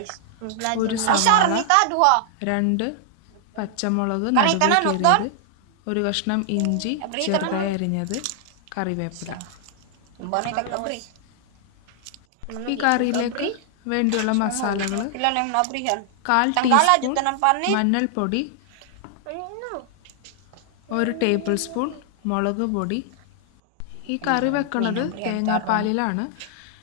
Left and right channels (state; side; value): different; both; correlation 0.00